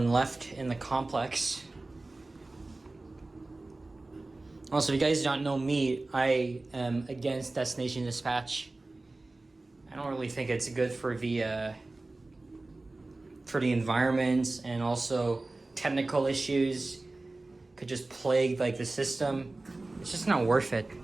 left in the complex. Also, if you guys don't know me, I am against destination dispatch. I don't really think it's good for the environment, and also technical issues could just plague like the system. It's just not worth it.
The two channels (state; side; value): quieter; left; 3.1 dB